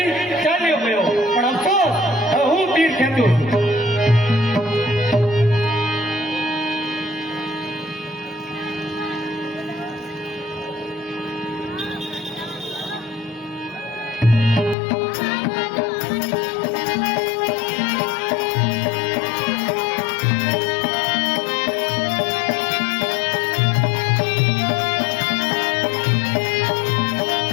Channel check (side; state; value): right; drops out; at 14.8 s